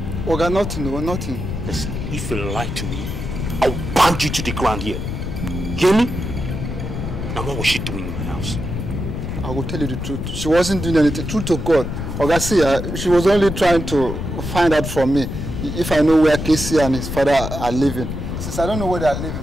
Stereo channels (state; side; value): noise; left; rumble, 5 dB below the sound